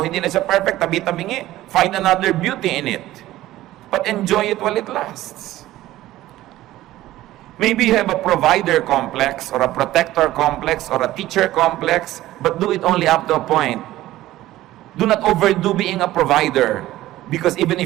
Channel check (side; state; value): left; quieter; 15.5 dB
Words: hindi na siya perfect, tabi-tabingi. Find another beauty in it. But enjoy it while it lasts. Maybe you have a provider complex, or a protector complex, or a teacher complex, but do it only up to a point. Do not overdo being a provider. Because even